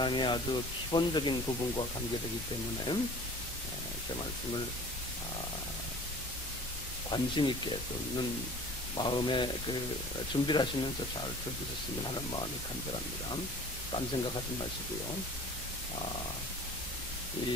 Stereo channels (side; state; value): both; normal; correlation 0.45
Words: 아주 기본적인 부분과 관계되기 때문에 제 말씀을 관심 있게 듣는 마음에 준비를 하시면서 잘 들으셨으면 하는 마음이 간절합니다. 딴 생각하지 마시고요.